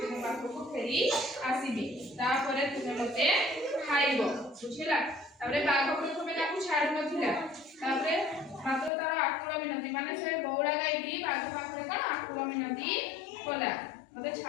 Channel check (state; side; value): drops out; right; at 8.9 s